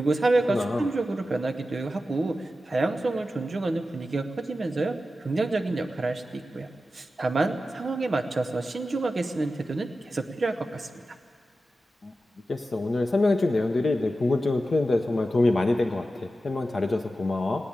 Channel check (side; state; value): both; normal; correlation 0.92